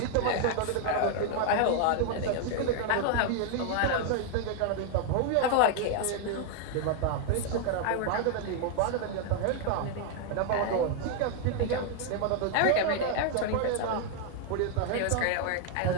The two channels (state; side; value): different; both; correlation 0.00